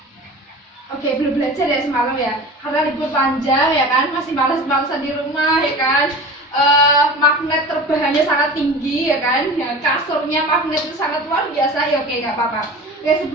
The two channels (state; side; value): normal; both; correlation 0.35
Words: Oke, belum belajar ya semalam ya, karena libur panjang ya kan, masih malas-malasan di rumah ya kan. Magnet terbahannya sangat tinggi ya kan, ya, kasurnya magnet itu sangat luar biasa ya. Oke, nggak apa-apa. Oke,